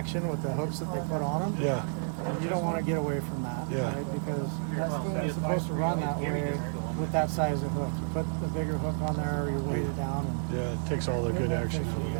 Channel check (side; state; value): left; silent; digital silence